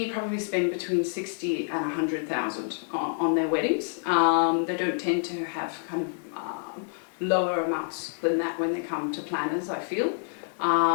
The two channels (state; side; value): silent; right; digital silence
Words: probably spend between 60 and 100,000 on their weddings. They don't tend to have kind of lower amounts than that when they come to planners, I feel.